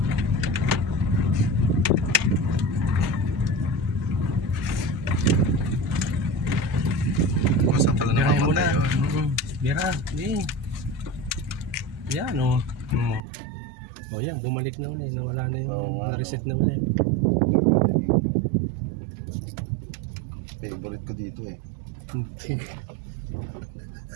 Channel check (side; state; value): left; drops out; at 13.2 s